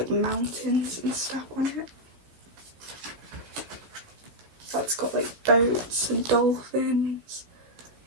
mountains and stuff on it. That's got like boats and dolphins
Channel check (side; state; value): left; late; 16 ms